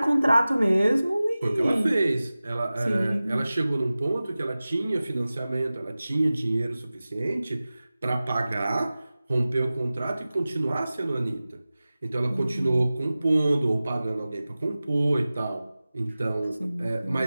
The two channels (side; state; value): both; inverted; correlation -0.97